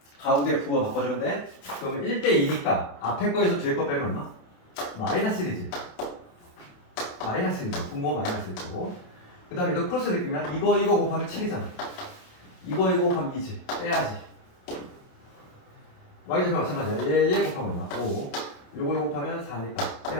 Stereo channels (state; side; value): late; right; 28 ms